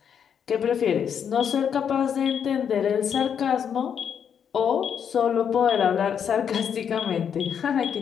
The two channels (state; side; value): quieter; right; 7.9 dB